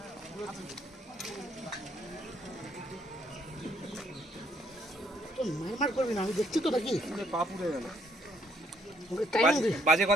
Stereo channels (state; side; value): normal; both; correlation 0.69